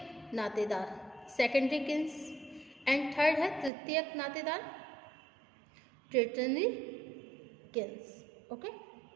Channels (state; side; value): drops out; left; at 3.7 s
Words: नातेदार, सेकेंडरी किन्स, एंड थर्ड है तृतीयक नातेदार, tertiary kins. Okay,